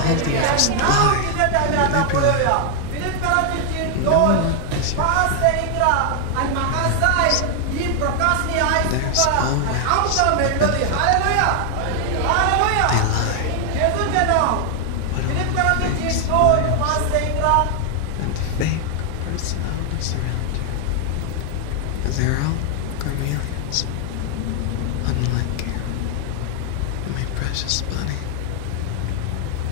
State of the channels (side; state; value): both; different; correlation 0.00